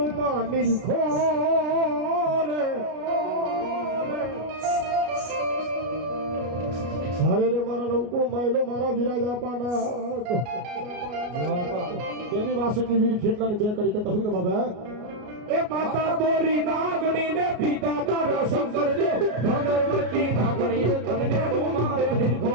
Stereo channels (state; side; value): late; left; 33 ms